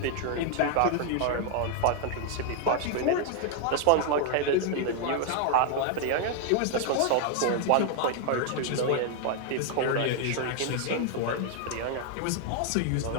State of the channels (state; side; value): different; both; correlation 0.00